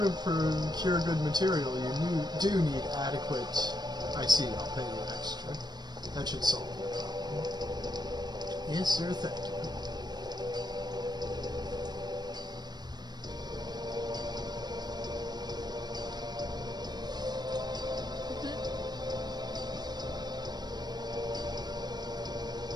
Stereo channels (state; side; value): late; left; 0.20 ms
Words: to procure good material, you do need adequate... I see, I'll pay you extra. That should solve the problem. Yes, sir, thank you.